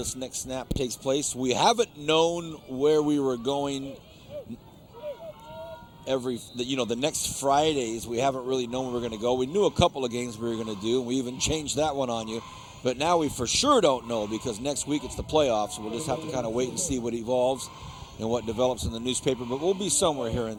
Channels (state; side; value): identical; both; correlation 1.00